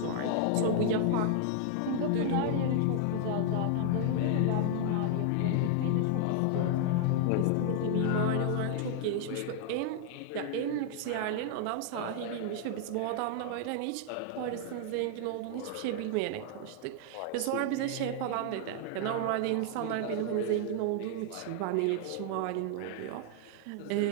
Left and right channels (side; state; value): both; different; correlation 0.00